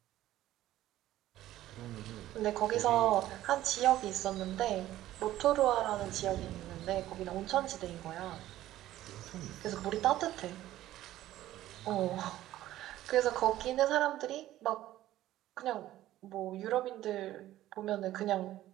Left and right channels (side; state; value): left; quieter; 14.2 dB